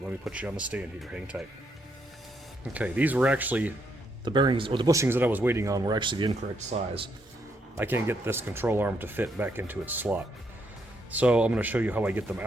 Let me put you on the stand here. Hang tight. Okay, these were actually the bearings, or the bushings that I was waiting on were actually the incorrect size. I can't get this control arm to fit back into its slot. So I'm going to show you how I get them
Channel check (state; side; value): normal; both; correlation 0.76